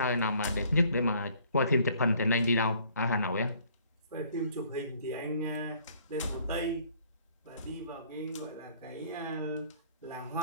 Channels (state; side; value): inverted; both; correlation -0.59